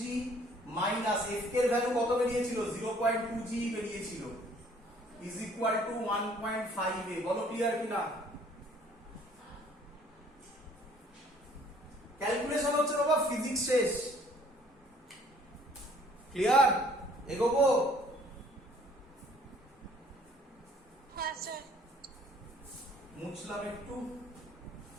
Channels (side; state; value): both; normal; correlation 0.58